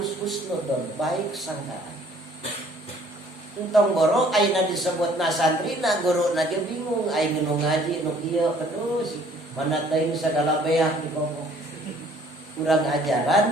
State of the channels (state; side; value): normal; both; correlation 0.58